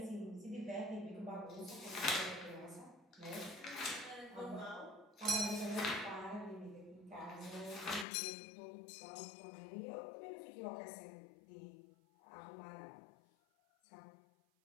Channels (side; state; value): right; drops out; at 8.1 s